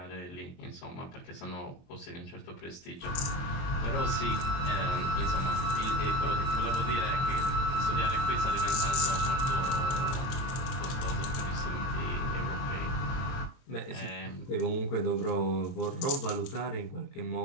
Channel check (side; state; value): right; late; 23 ms